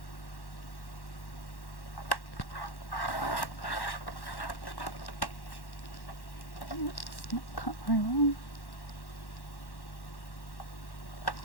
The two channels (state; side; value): late; right; 1.1 ms